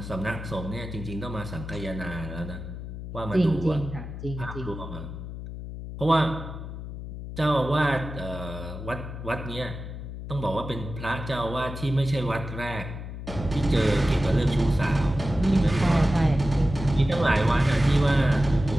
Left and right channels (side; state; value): left; noise; hum, 9 dB below the sound